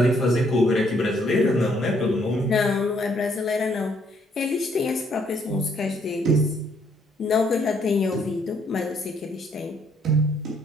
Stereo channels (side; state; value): both; normal; correlation 0.68